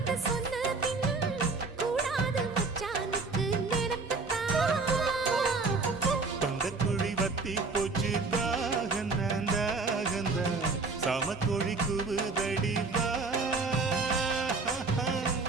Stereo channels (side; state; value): left; quieter; 4.1 dB